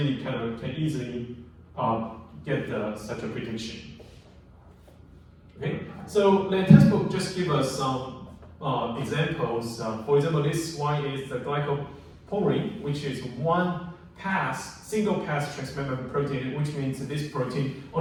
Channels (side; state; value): both; identical; correlation 1.00